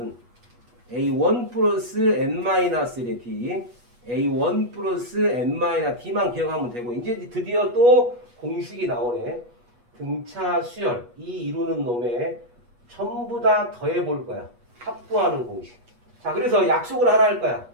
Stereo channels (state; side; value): late; left; 8.2 ms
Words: A1 플러스 N-1의 D, A1 플러스 N-D만 기억하면 되고 이제 드디어 또 공식이 나오네. 등차 수열 이 이루는 놈에 전부 다 더해 볼 거야. 합구하는 공식. 자, 그래서 약속을 하나 할 거야.